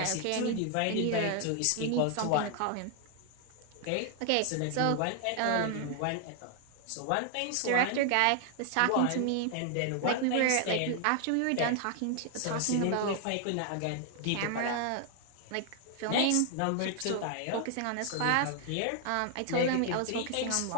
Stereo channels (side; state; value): both; different; correlation 0.00